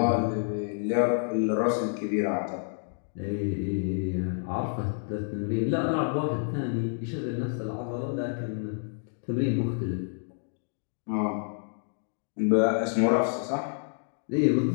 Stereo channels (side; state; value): right; silent; digital silence